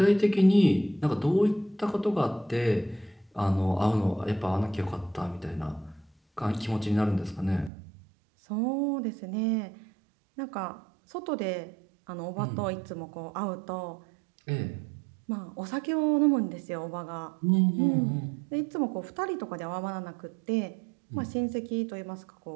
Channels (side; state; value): left; drops out; at 7.7 s